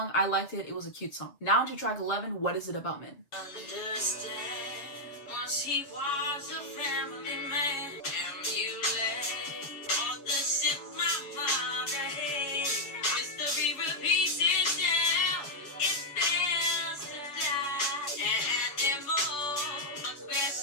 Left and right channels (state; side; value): late; right; 7.2 ms